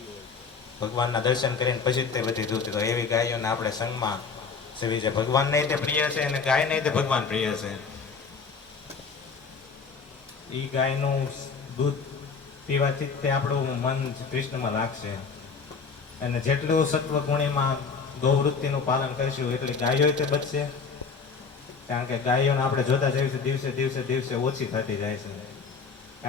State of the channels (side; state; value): right; quieter; 5.2 dB